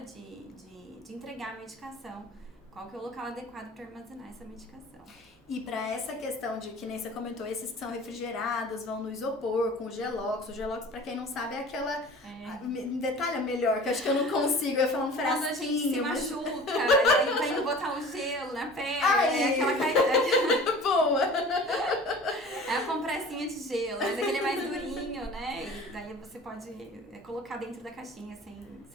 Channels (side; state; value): both; normal; correlation 0.42